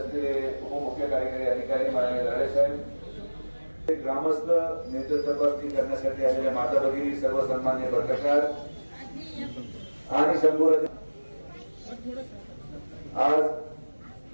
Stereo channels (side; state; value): both; inverted; correlation -1.00